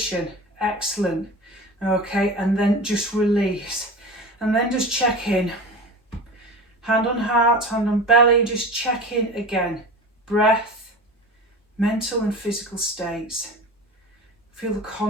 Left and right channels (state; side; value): normal; both; correlation 0.32